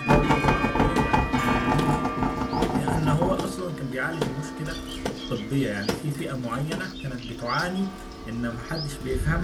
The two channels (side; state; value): both; identical; correlation 1.00